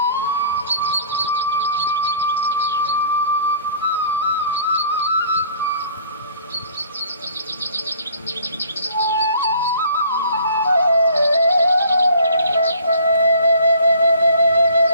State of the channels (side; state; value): both; inverted; correlation -0.54